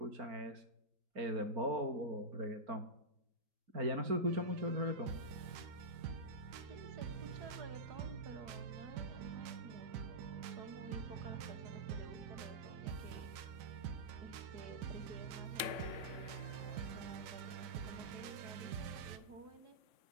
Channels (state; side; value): late; left; 3.6 ms